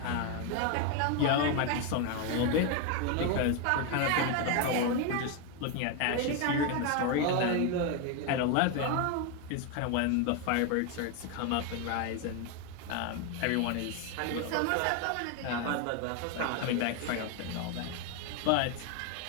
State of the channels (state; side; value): different; both; correlation 0.01